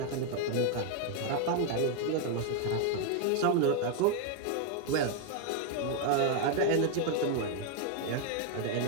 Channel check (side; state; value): both; different; correlation 0.01